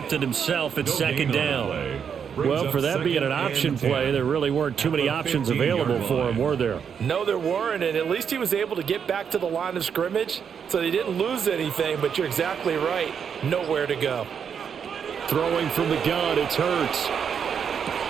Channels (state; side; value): quieter; left; 7.3 dB